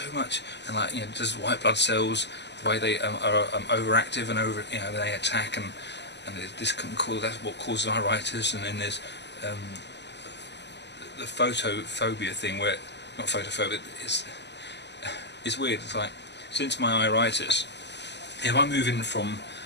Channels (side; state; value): right; late; 0.50 ms